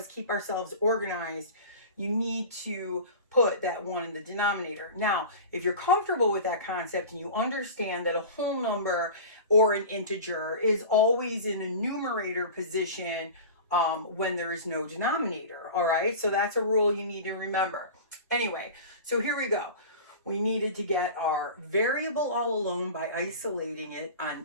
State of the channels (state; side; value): inverted; both; correlation -0.34